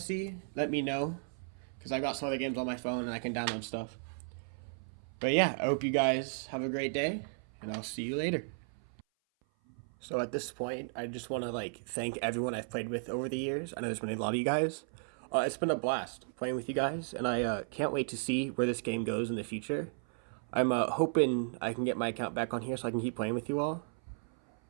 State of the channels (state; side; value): silent; left; 55 dB below the other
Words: let me know. Because I've got some other games on my phone and I can download stuff. But yeah, I hope you guys have a great day, and I'll see you later. So at this point, I just want to thank everyone I've played with over the years. I know there's been a lot of you guys. It's been a blast playing with you guys, and I can't wait to see where this game goes in the future. I'm hoping I can get my account back on here so I can keep playing with you all.